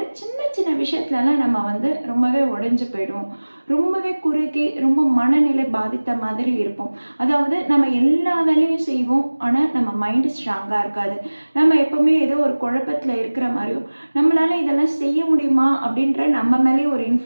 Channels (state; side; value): inverted; both; correlation -1.00